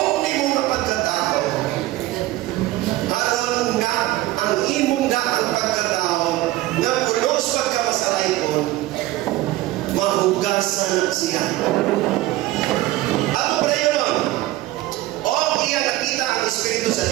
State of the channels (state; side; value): quieter; left; 16.7 dB